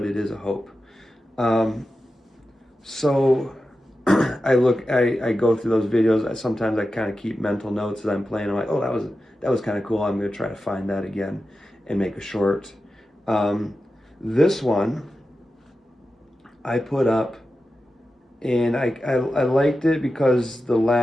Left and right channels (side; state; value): both; normal; correlation 0.92